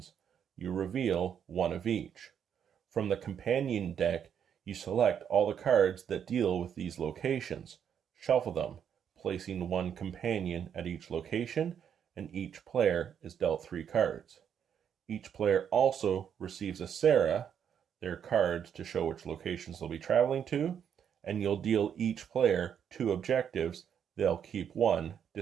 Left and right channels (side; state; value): left; quieter; 8.4 dB